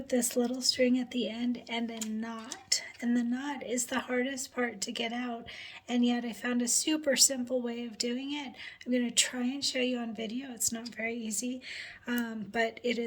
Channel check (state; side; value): identical; both; correlation 1.00